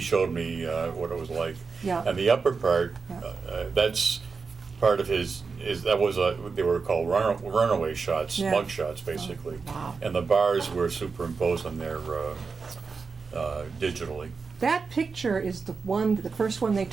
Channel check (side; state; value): left; quieter; 4.9 dB